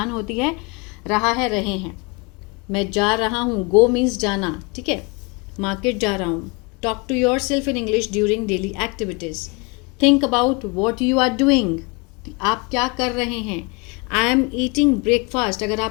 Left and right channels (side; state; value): right; quieter; 29.1 dB